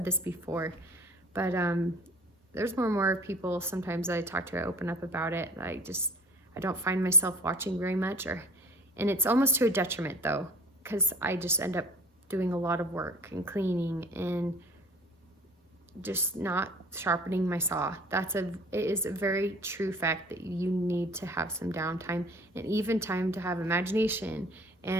this before, but there's more and more people sometimes I talk to, I open up about it. I don't find myself watching very much, and it's almost to a detriment though, because I just end up doing a lot of work and cleaning and just not sharpening my saw. It is a very true fact that you need to have some downtime, and even time to have imagination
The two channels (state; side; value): normal; both; correlation 0.48